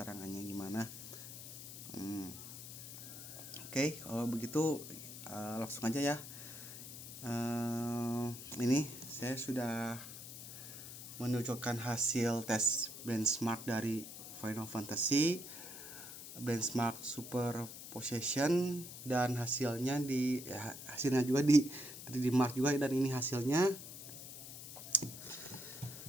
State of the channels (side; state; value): left; noise; hiss, 11 dB below the sound